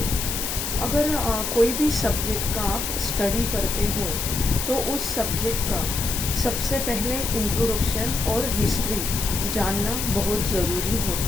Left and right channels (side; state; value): left; noise; hiss, 3 dB below the sound